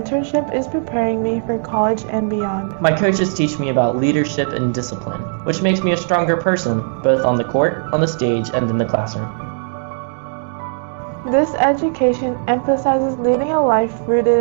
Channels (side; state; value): left; silent; digital silence